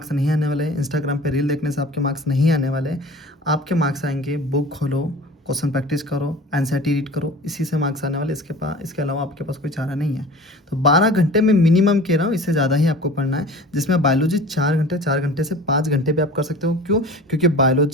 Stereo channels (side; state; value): both; normal; correlation 0.41